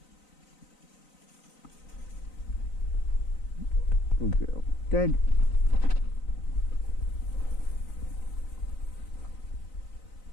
Good girl. Dead.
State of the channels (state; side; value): late; right; 3.9 ms